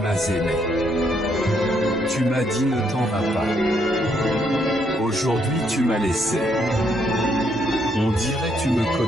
aimé. Tu m'as dit ne t'en vas pas. Aujourd'hui tu m'as laissé. On dirait tu me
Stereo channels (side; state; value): both; normal; correlation 0.73